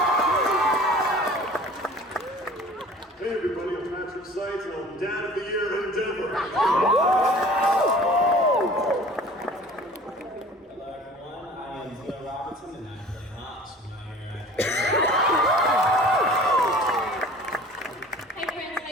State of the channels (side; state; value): both; normal; correlation 0.45